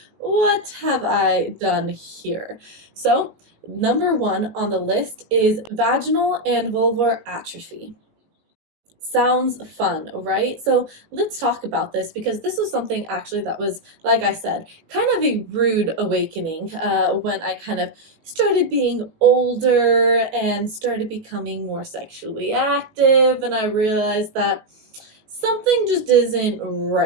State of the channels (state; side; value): late; left; 19 ms